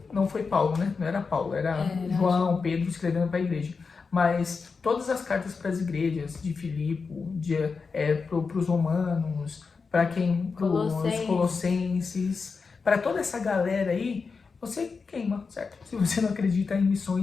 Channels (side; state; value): right; quieter; 4.9 dB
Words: foi Paulo, né? Não era Paulo, era João, Pedro escrevendo para a igreja. Mas todas as cartas para as igrejas, de Filipe, para os romanos, para os colossenses, para toda essa galera aí, você queima, certo? Se você não acredita em